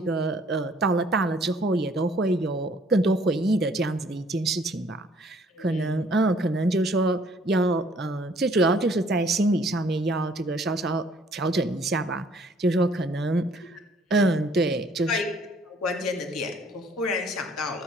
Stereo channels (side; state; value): both; normal; correlation 0.60